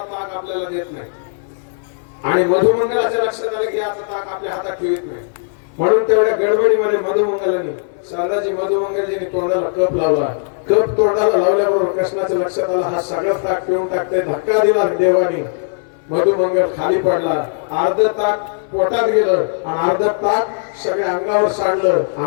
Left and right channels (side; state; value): right; silent; 65 dB below the other